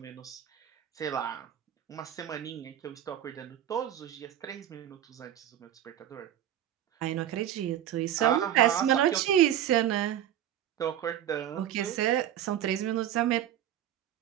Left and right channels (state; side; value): quieter; left; 11.2 dB